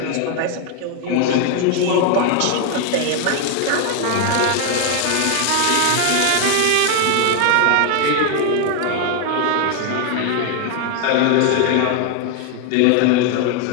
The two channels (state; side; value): different; both; correlation 0.01